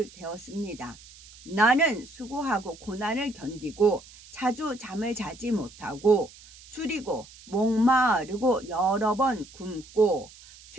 나는 수고하고 고난을 견디고 자주 잠을 자지 못하고 줄이고 목마르고 여러 번 굶고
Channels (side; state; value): right; noise; hiss, 21 dB below the sound